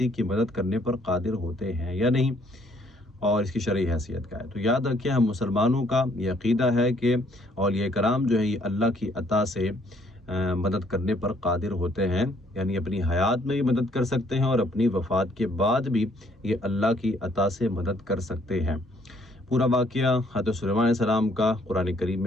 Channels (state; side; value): normal; both; correlation 0.65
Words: کی مدد کرنے پر قادر ہوتے ہیں یا نہیں، اور اس کی شرعی حیثیت کیا ہے۔ تو یاد رکھیں، ہم مسلمانوں کا یہ عقیدہ ہے کہ اولیاء کرام جو ہے یہ اللہ کی عطا سے مدد کرنے پر قادر ہوتے ہیں، یعنی اپنی حیات میں بھی مدد کر سکتے ہیں اور اپنی وفات کے بعد بھی یہ اللہ کی عطا سے مدد کر سکتے ہیں۔ پورا واقعہ حضرت سلیمان علیہ السلام کا قرآن کریم